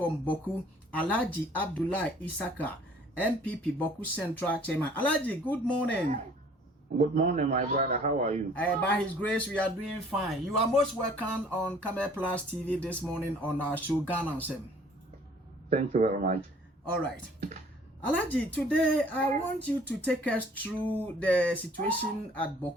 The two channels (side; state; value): both; normal; correlation 0.55